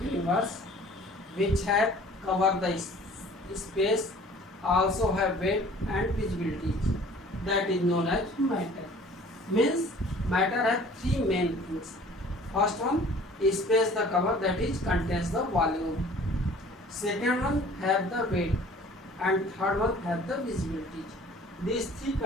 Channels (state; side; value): normal; both; correlation 0.50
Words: universe which have covered the space, also have weight and visibility. That is known as matter. Means matter has three main things. First one, space the cover, that is contains the volume. Second one have the weight, and third one have the visibility. These three